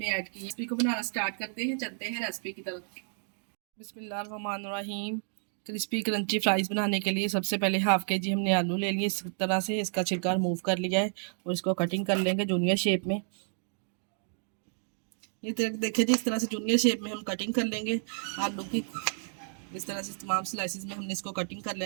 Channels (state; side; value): silent; left; 57 dB below the other